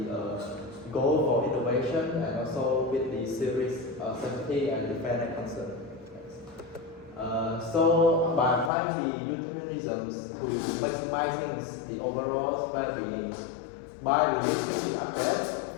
goal for innovation and also with the serious safety and the fairness concern. So by applying the utilitarianism to maximizing the overall well-being, by releasing the update,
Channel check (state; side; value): drops out; right; at 8.7 s